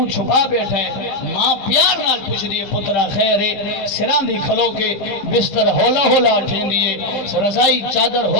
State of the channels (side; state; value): right; late; 15 ms